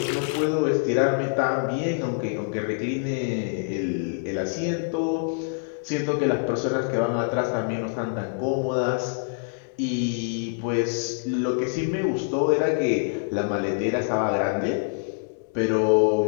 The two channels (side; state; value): right; silent; digital silence